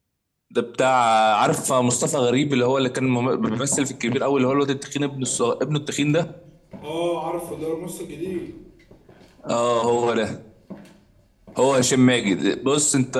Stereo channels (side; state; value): both; identical; correlation 1.00